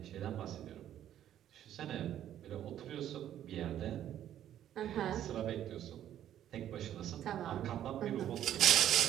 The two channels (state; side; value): quieter; left; 11.2 dB